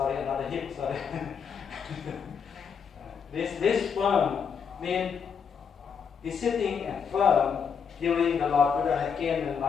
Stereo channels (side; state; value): right; quieter; 6.7 dB